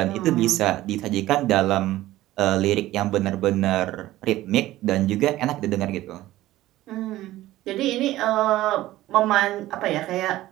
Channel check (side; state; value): left; quieter; 15.7 dB